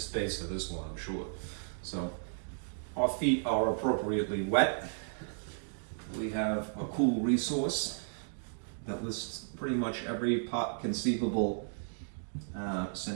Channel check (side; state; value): left; silent; digital silence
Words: for this one, I'm sure. So our feet are appropriately wet. We have a cool resource that lists pretty much every conceivable